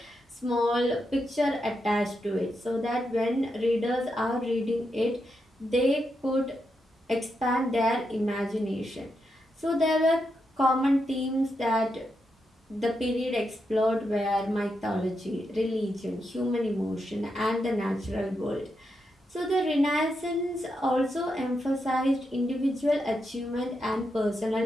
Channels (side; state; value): both; normal; correlation 0.84